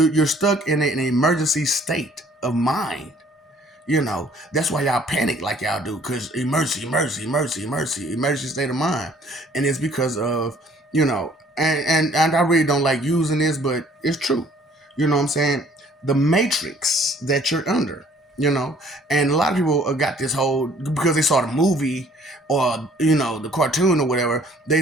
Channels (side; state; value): both; normal; correlation 0.58